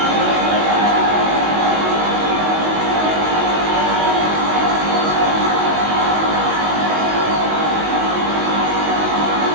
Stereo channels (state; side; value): late; left; 19 ms